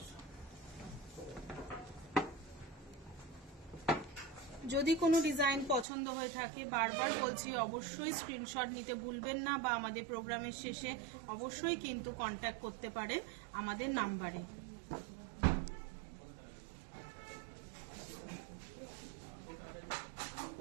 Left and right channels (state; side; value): drops out; left; at 5.9 s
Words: যদি কোনো ডিজাইন পছন্দ হয়ে থাকে বারবার বলছি অবশ্যই স্ক্রিনশট নিতে ভুলবেন না, বা আমাদের প্রোগ্রামের শেষে অবশ্যই কিন্তু কন্ট্যাক্ট করতে পারেন আমাদের নাম্বারে।